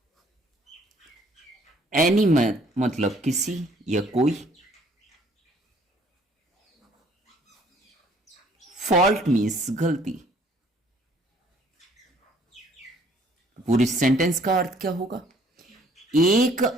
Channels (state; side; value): normal; both; correlation 0.60